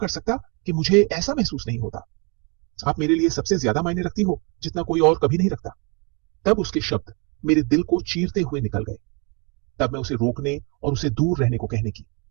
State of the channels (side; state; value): left; quieter; 33.0 dB